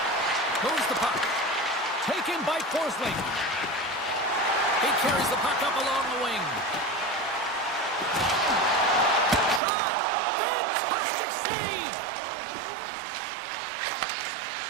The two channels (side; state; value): left; drops out; at 9.6 s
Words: Forsling. He carries the puck up along the wing. Shot! Fantastic save!